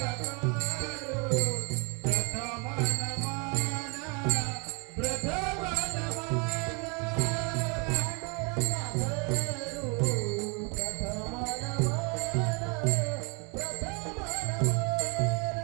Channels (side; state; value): left; quieter; 32.9 dB